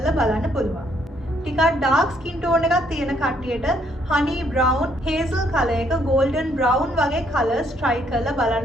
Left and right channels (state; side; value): normal; both; correlation 0.69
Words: බලන්න පුළුවන්. ටිකක් dark skin tone එකක් තියෙන කට්ටියට honey brown hazel color එක golden brown වගේ colors try කරලා